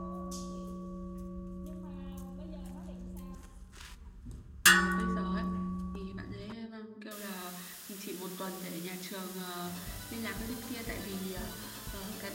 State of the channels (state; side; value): identical; both; correlation 1.00